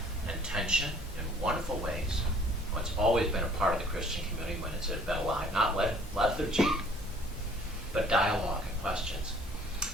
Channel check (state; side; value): normal; both; correlation 0.56